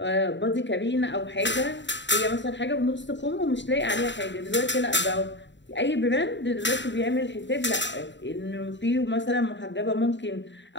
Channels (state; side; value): late; right; 0.53 ms